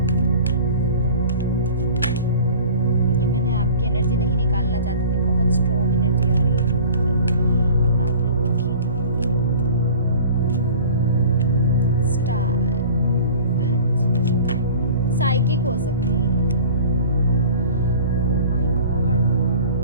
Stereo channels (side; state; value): both; inverted; correlation -0.44